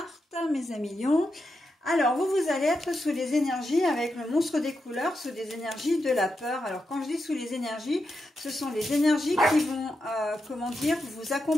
mes amis lions. Alors, vous allez être sous les énergies avec le monstre des couleurs, sous des énergies de la peur. Alors, quand je dis sous les énergies, ce sont les énergies qui vont, comment dire, vous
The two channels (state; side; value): normal; both; correlation 0.86